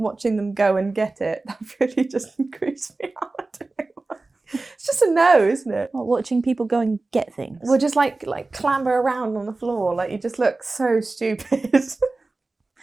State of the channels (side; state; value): left; quieter; 3.3 dB